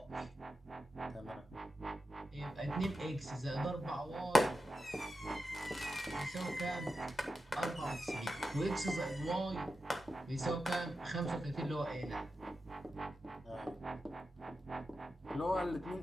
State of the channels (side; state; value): both; normal; correlation 0.90